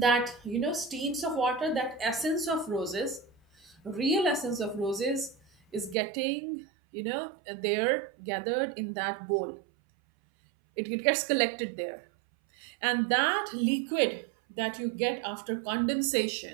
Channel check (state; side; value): drops out; left; at 6.0 s